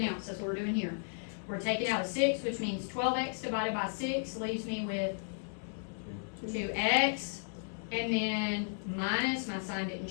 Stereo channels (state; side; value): silent; right; 55 dB below the other